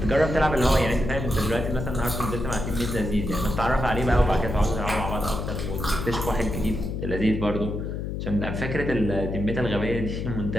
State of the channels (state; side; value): noise; left; hum, 4 dB below the sound